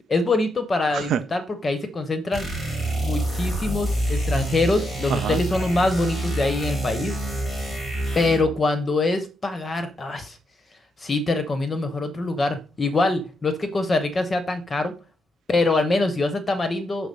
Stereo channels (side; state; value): both; normal; correlation 0.82